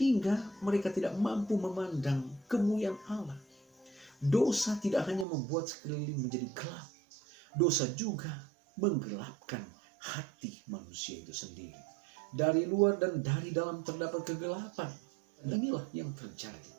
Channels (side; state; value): left; drops out; at 5.2 s